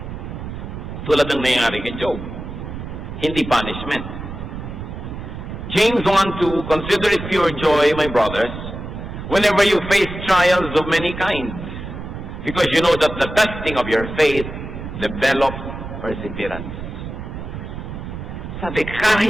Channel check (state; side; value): noise; right; rumble, 8 dB below the sound